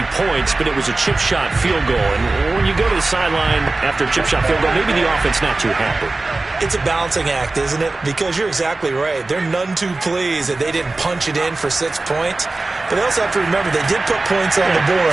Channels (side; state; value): left; quieter; 3.2 dB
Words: points, but it was a chip shot field goal. And when you go to the sideline after a chip shot field goal, maybe the offense not too happy. It's a balancing act, isn't it? Because you're exactly right. They're none too pleased that they didn't punch it in for 6 points. But they also have to remember they did put points on the board.